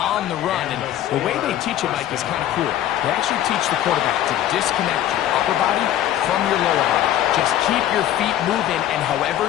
the run. And the way they teach it, Mike, is kind of cool. They actually teach the quarterback to disconnect your upper body from your lower body. Just keep your feet moving, and however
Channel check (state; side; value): quieter; right; 12.2 dB